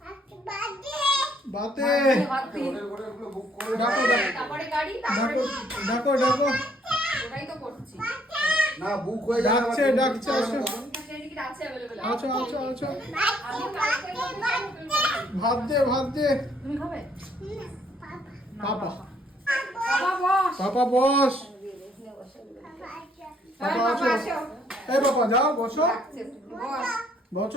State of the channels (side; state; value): both; normal; correlation 0.66